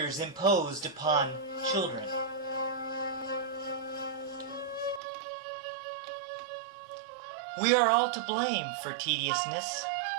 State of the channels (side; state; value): left; drops out; at 5.0 s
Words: imposed upon children. We are all to blame for tediousness.